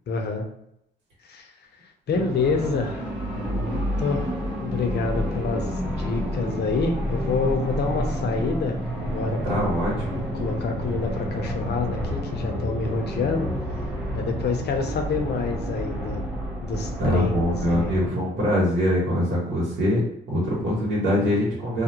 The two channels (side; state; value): both; normal; correlation 0.59